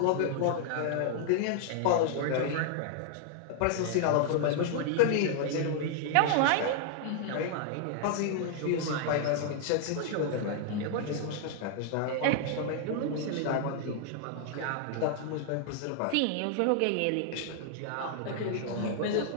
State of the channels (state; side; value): different; both; correlation 0.00